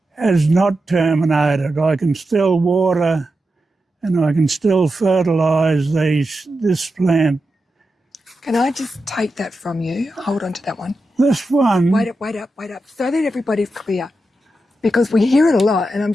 has not terminated. I can still water and I can still fertilise this plant. Can I just take that from you? Hold on to that one. This one... Wait up, so that everybody's clear. Because we hear it a lot, and I'm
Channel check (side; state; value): both; normal; correlation 0.89